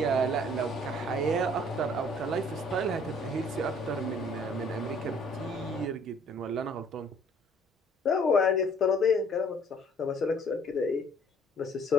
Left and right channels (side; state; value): both; normal; correlation 0.58